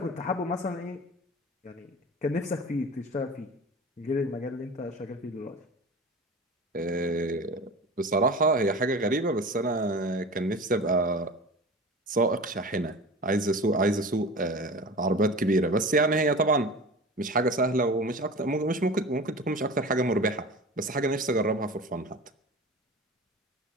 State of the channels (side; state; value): both; normal; correlation 0.35